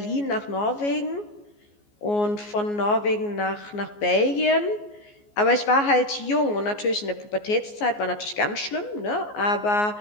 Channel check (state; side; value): late; right; 14 ms